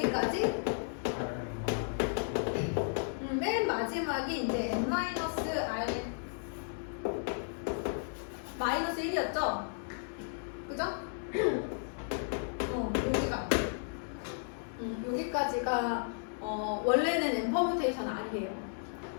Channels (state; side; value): silent; right; digital silence